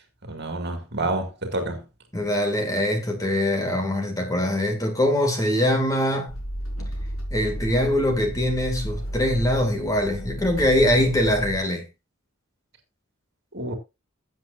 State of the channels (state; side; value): normal; both; correlation 0.54